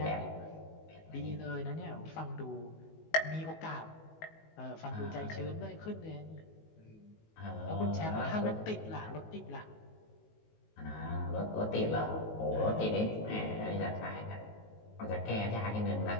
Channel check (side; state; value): right; late; 19 ms